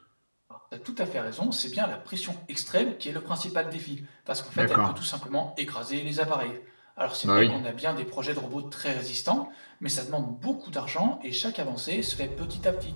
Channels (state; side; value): inverted; both; correlation -1.00